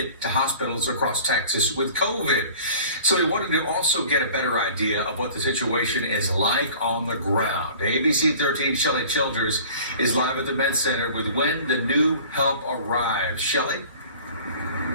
to hospitals across Texas with COVID. So we wanted to also get a better idea of what the situation is like on the ground. ABC 13 Shelley Childers is live at the Med Center with when the new help arrives. Shelley?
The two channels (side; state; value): both; inverted; correlation -0.46